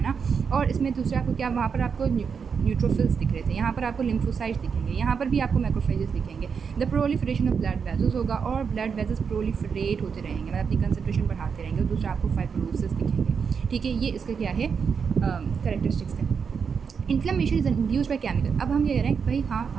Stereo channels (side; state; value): left; quieter; 6.2 dB